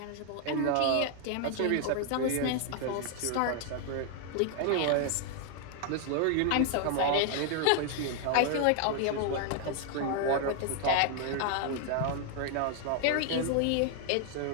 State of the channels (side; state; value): both; different; correlation 0.00